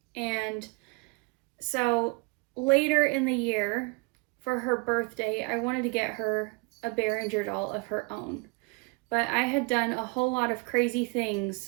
And so later in the year, for her birthday, I wanted to get her a Berenguer doll of her own. But I had done a whole lot of crazy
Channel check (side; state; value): left; quieter; 30.7 dB